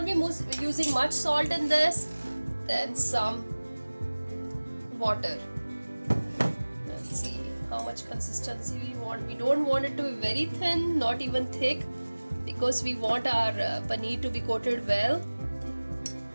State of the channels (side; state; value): both; inverted; correlation -1.00